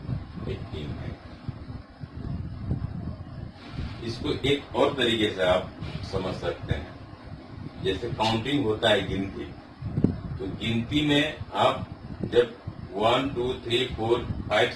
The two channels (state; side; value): identical; both; correlation 1.00